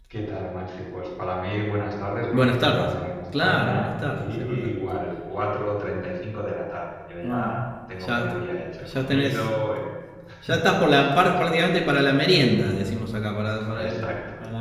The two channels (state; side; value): identical; both; correlation 1.00